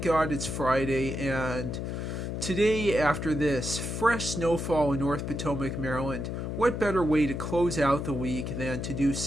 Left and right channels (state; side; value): noise; left; hum, 4 dB below the sound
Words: God it's Friday, and today, after this fresh snowfall in North Potomac, Maryland, what better way to close out the week than to do